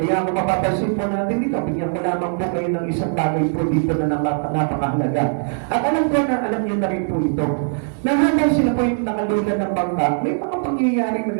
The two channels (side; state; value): left; silent; digital silence